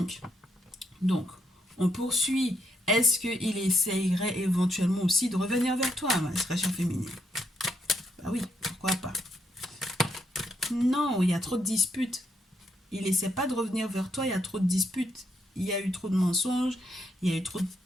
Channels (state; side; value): normal; both; correlation 0.77